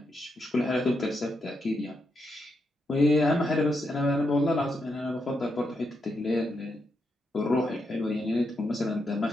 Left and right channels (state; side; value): normal; both; correlation 0.82